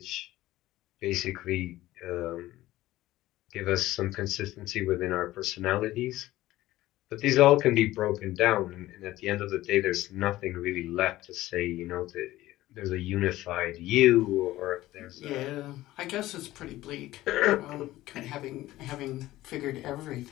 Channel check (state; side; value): quieter; right; 16.2 dB